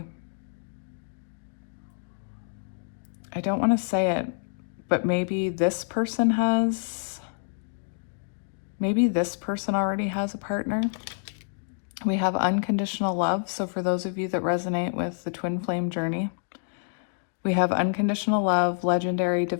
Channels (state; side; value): silent; right; digital silence